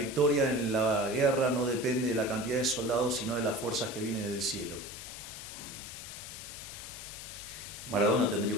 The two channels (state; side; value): noise; left; hiss, 11 dB below the sound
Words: en la guerra no depende de la cantidad de soldados, sino de las fuerzas que vienen del cielo. Maradona tendría